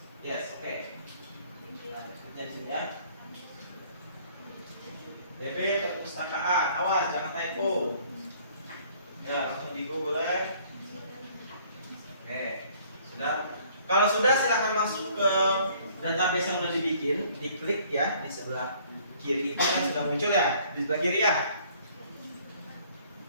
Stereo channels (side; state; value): both; inverted; correlation -0.58